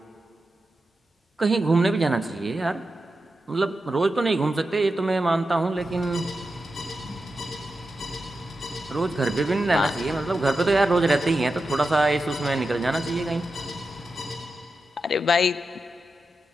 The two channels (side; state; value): both; normal; correlation 0.90